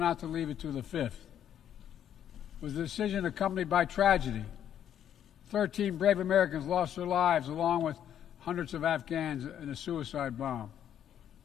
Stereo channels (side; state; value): right; quieter; 9.9 dB